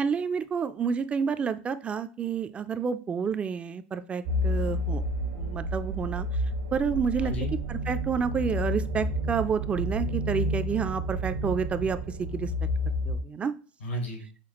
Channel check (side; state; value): left; quieter; 3.2 dB